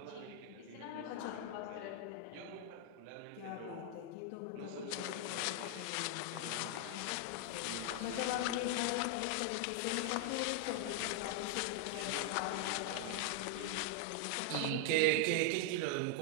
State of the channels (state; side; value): different; both; correlation 0.00